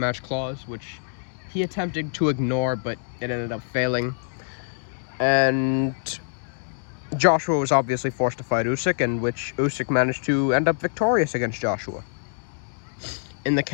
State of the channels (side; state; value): right; silent; digital silence